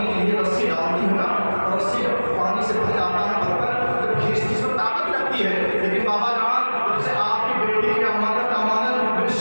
کے لیے رسی ڈالتی ہیں نا اور رسی پانی سے بھر جاتا ہے برتن جب کھینچتی اس میں طاقت لگتی ہے لیکن بابا جان جب سے آپ کی بیٹی کی امانت میرے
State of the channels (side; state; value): both; inverted; correlation -1.00